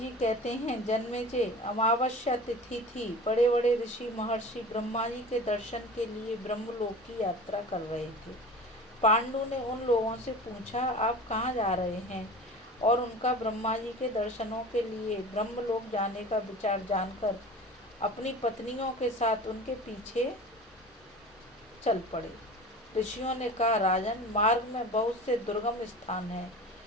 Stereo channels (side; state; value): both; normal; correlation 0.36